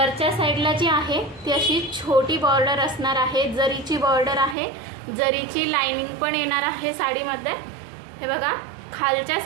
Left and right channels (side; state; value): left; drops out; at 4.5 s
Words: साईडला जी आहे ती अशी छोटी बॉर्डर असणार आहे, जरीची बॉर्डर आहे, जरीची लाइनिंग पण येणार आहे साडीमध्ये। हे बघा, खालच्या